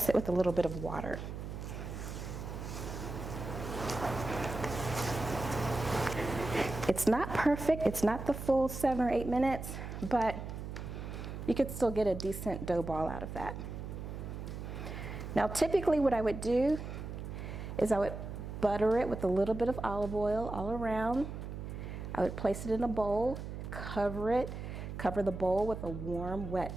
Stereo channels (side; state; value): right; noise; hum, 7 dB below the sound